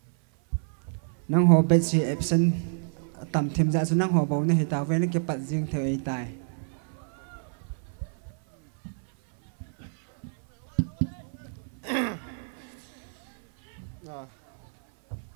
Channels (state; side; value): silent; left; 59 dB below the other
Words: nang ho bet si absent tam thêm ra số nang ho bầu này tao về nó cái bật riêng thời tài